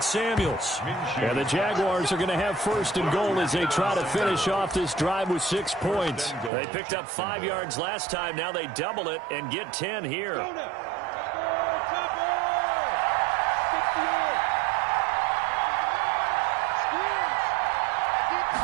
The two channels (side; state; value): left; drops out; at 6.5 s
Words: Samuels. And the Jaguars are going to have 1st and goal as they try to finish off this drive with 6 points. They picked up 5 yards last time. Now they double it and get 10 here.